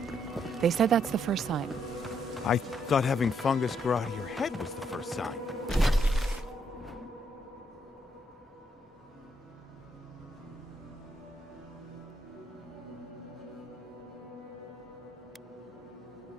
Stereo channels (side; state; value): both; normal; correlation 0.74